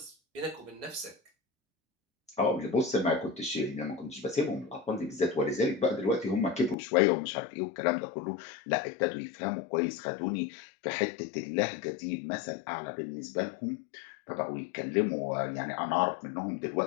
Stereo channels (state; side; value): drops out; right; at 6.8 s